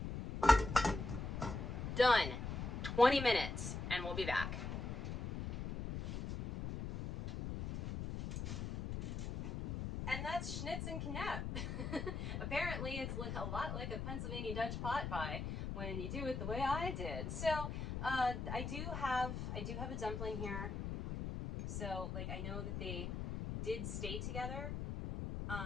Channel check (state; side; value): noise; left; rumble, 4 dB below the sound